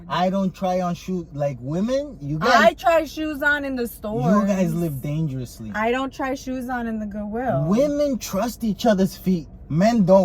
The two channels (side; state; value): both; identical; correlation 1.00